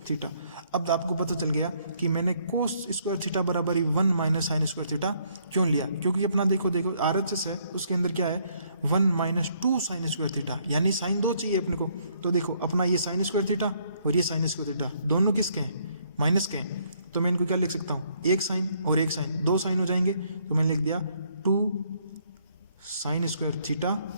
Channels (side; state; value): both; inverted; correlation -0.68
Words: थीटा। अब आपको पता चल गया कि मैंने कोस स्क्वायर थीटा बराबर ही 1 माइनस साइन स्क्वायर थीटा क्यों लिया, क्योंकि अपना देखो RHS है उसके अंदर क्या है 1 माइनस 2 साइन स्क्वायर थीटा, यानी साइन 2 चाहिए अपने को। तो देखो अपना ये साइन स्क्वायर थीटा और ये साइन स्क्वायर थीटा दोनों किसके हैं, माइनस के हैं, तो मैं इनको क्या लिख सकता हूँ, एक साइन और एक साइन, 2 साइन हो जाएंगे, तो मैंने लिख दिया 2 साइन स्क्वायर थीटा